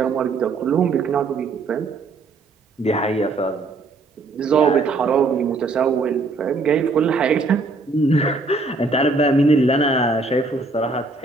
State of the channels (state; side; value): quieter; left; 3.6 dB